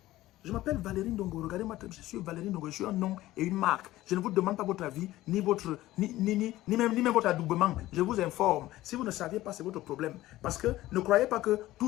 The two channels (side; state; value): right; quieter; 16.2 dB